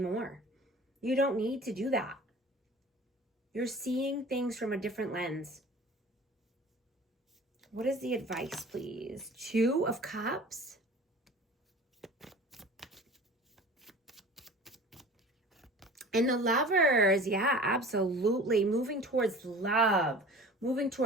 You don't need to do that. You're seeing things from a different lens. What is the advice, please? 2 of Cups. And the Lovers, yeah, absolutely. Moving towards love, moving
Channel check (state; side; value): normal; both; correlation 0.42